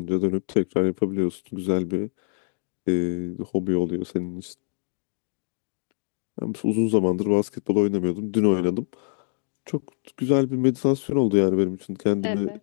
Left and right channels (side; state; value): right; silent; digital silence